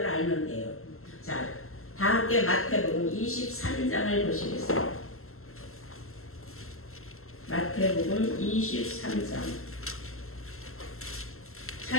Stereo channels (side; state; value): right; late; 0.62 ms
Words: 알면 돼요. 자, 다 함께 마태복음 23장을 보시겠어요. 마태복음 23장.